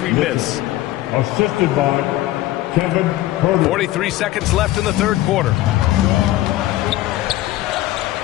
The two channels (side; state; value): right; quieter; 16.0 dB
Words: miss. Assisted by Kevin Herder. 43 seconds left in the third quarter.